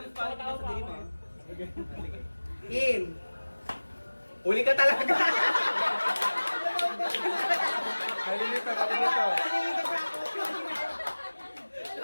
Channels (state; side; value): inverted; both; correlation -1.00